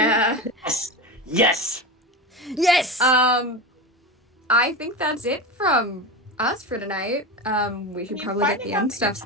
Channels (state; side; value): normal; both; correlation 0.23